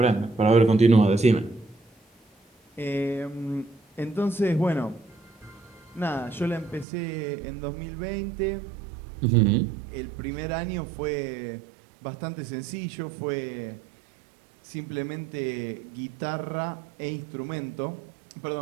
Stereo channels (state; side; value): drops out; left; at 6.9 s